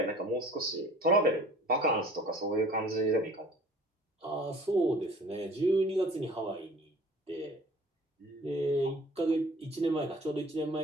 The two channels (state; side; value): normal; both; correlation 0.48